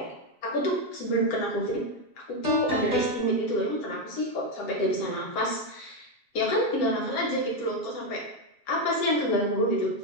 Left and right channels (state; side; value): late; right; 7.3 ms